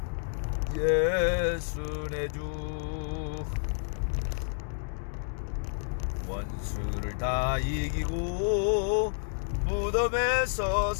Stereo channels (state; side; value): silent; right; digital silence